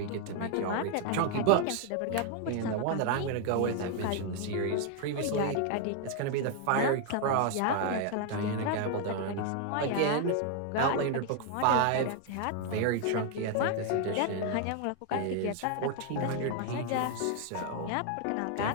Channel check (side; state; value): both; different; correlation 0.00